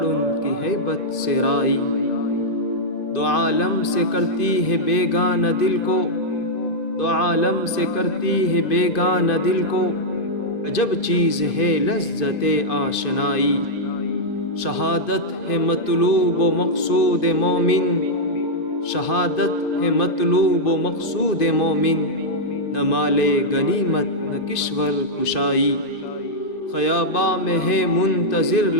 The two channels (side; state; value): right; late; 2.0 ms